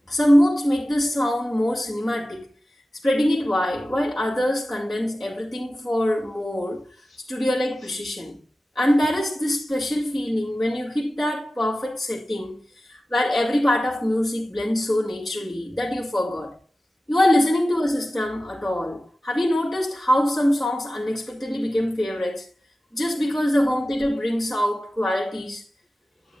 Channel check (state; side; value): normal; both; correlation 0.95